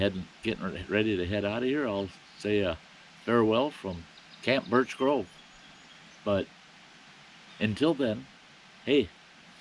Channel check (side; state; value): both; identical; correlation 1.00